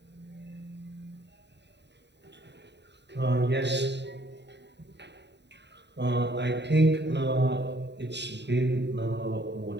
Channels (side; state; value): left; late; 0.50 ms